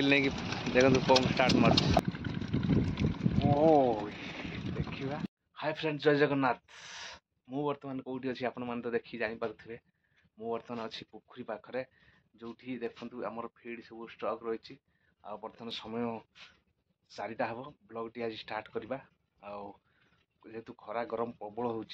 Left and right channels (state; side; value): identical; both; correlation 1.00